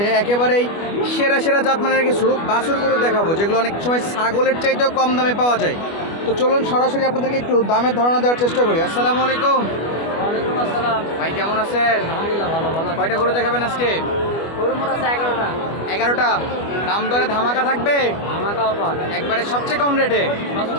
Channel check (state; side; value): late; right; 25 ms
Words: একেবারেই সেরা সেরা জাতমানের কিছু বাছুর গরু দেখাবো, যেগুলো অনেক সময় ছাগলের চাইতেও কম দামে পাওয়া যায়। তো চলুন সরাসরি আপনাদেরকে একটু দামের ধারণা দেওয়ার চেষ্টা করি। আসসালামু আলাইকুম। ওয়ালাইকুম আসসালাম। ভাই কেমন আছেন? আলহামদুলিল্লাহ ভালো ভালো। কয়টা গরু দেখাবেন আজকে? গরু মোট আছে 11টা। 11টা। দাম দরে ধামাকা থাকবে আমাকে অফার একবারে সবচেয়ে কম রেটে?